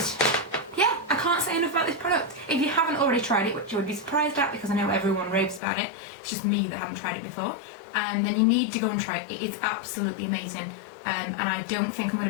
yeah, I can't say enough about this product. If you haven't already tried it, which you would be surprised at because I know everyone raves about it, it's just me that haven't tried it before, then you need to go and try it. It is absolutely amazing, and I don't think I'm going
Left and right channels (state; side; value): drops out; right; at 5.6 s